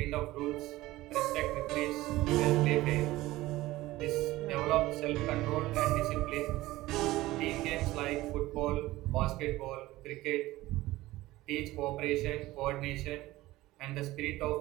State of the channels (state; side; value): quieter; left; 17.6 dB